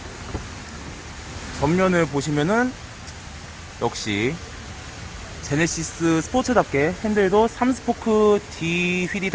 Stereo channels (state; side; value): identical; both; correlation 1.00